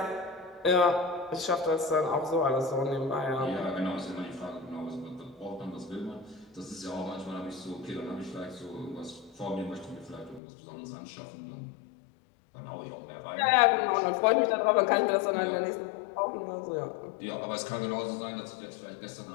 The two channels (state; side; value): drops out; right; at 10.4 s